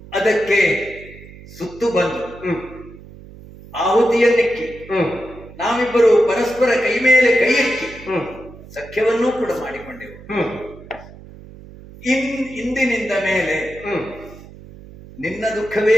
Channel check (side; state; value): right; noise; hum, 18 dB below the sound